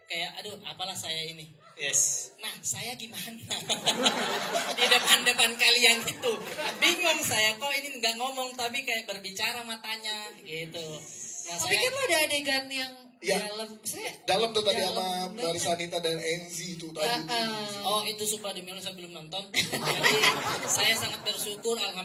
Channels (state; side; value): identical; both; correlation 1.00